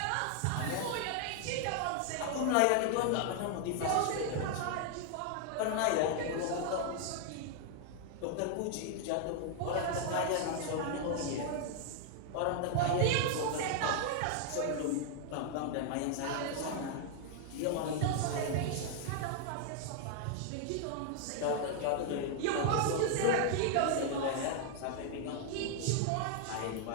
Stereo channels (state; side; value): different; both; correlation 0.00